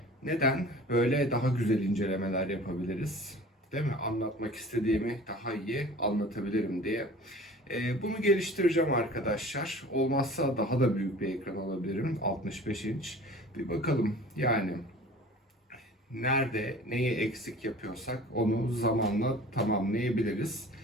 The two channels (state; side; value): normal; both; correlation 0.43